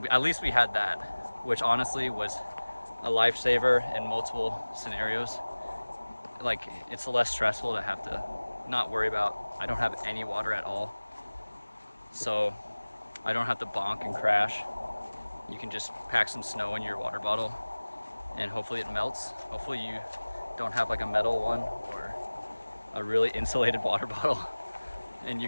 at least we had that, which honestly was a lifesaver in multiple scenarios. Like, it's less stressful to have to not worry about, I don't have any water at all, so I don't have to bonk and crash. You can just pack some snow in your water bottle, and hopefully it melts. Hopefully you don't have like a metal one or a really insulated water bottle, and you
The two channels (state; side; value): inverted; both; correlation -1.00